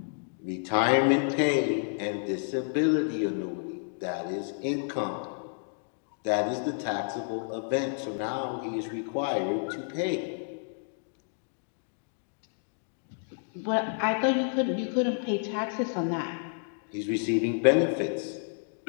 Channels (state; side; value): silent; right; digital silence